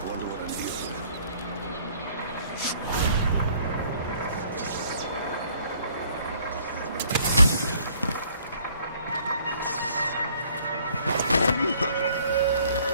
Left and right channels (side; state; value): both; inverted; correlation -0.60